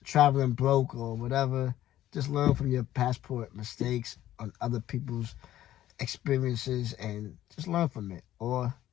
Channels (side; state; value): right; quieter; 13.2 dB